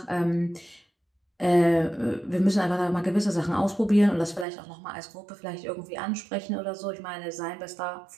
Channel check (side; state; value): left; drops out; at 4.5 s